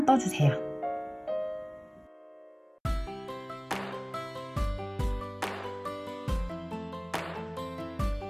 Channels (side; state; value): both; identical; correlation 1.00